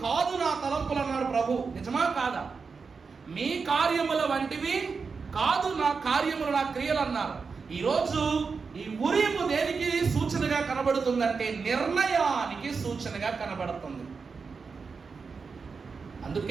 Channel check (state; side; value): quieter; left; 5.0 dB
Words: కాదు నా తలంపులు అన్నాడు ప్రభు. నిజమా కాదా? మీ కార్యముల వంటివి కాదు నా కార్యములు, నా క్రియలు అన్నారు. ఈరోజు ఈ ఉరీము దేనికి సూచనగా కనబడుతుందంటే నిర్ణయానికి సూచనగా కనబడుతుంది.